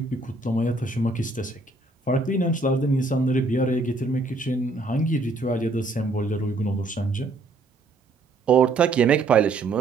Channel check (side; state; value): left; quieter; 3.3 dB